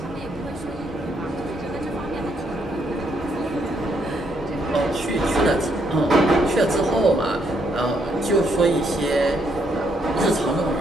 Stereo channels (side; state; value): both; normal; correlation 0.74